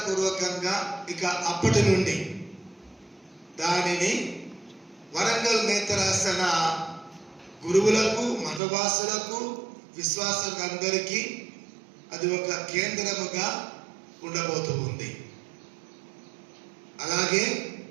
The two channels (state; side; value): drops out; left; at 8.6 s